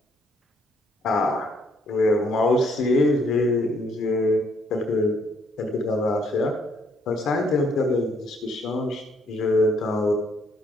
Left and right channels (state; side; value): normal; both; correlation 0.68